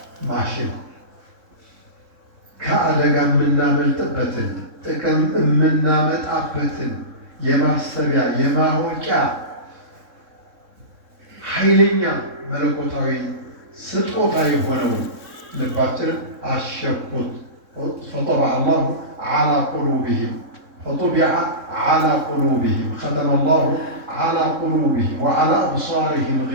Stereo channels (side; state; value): left; late; 3.6 ms